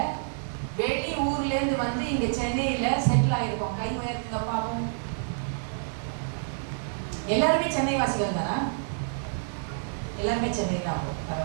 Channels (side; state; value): left; silent; digital silence